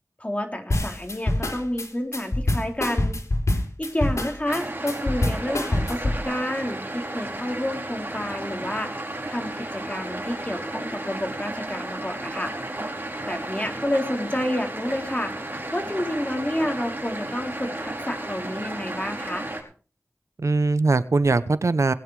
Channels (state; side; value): normal; both; correlation 0.88